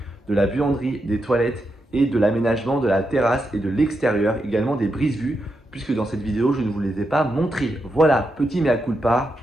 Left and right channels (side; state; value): both; normal; correlation 0.85